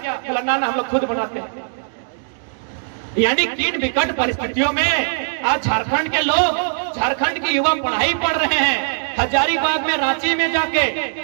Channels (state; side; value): silent; left; digital silence